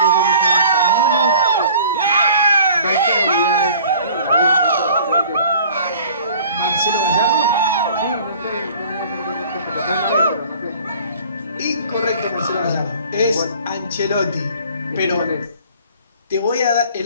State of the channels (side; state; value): both; inverted; correlation -0.49